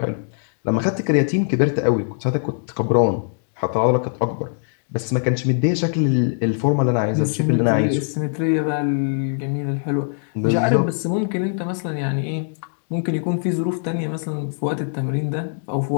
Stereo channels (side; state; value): right; silent; digital silence